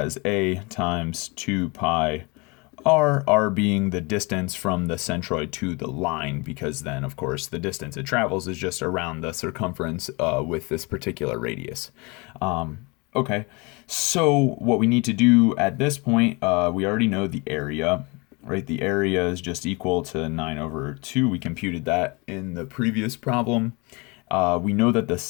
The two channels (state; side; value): quieter; right; 27.9 dB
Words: A times 2 pi r being the distance from the centroid to the line, because then, of course, the distance it travels is just around the circumference with this particular radius. Okay, so what we need to do at this point, we already know the area, right? The area is just equal to 9/2. We computed that in the previous problem. We know that the